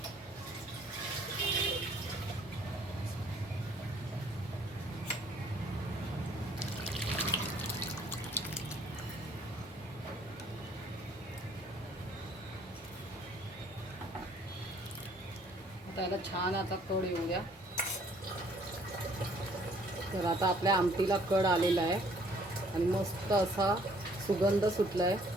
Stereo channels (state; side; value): normal; both; correlation 0.60